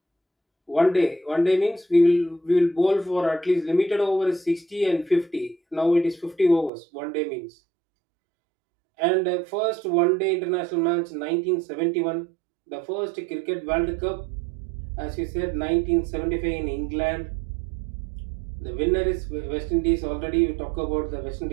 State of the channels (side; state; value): left; drops out; at 6.7 s